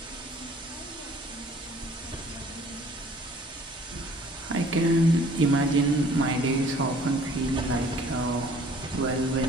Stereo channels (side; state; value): both; normal; correlation 0.54